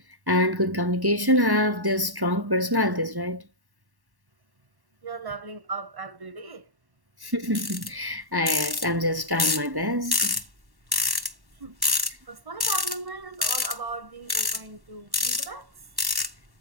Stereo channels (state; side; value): late; left; 1.1 ms